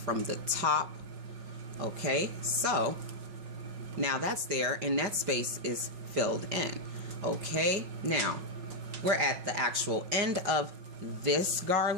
the top. Okay, so now that's there and that space is filled in. Okay, now we're at the actual end of this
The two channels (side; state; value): left; late; 5.4 ms